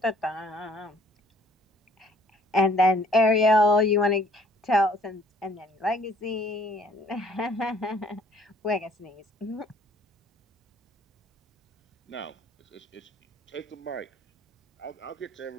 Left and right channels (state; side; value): normal; both; correlation 0.59